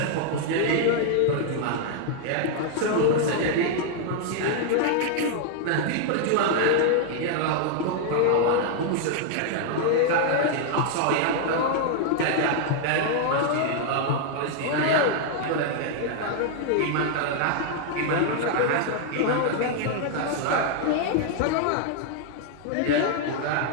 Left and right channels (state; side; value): different; both; correlation 0.00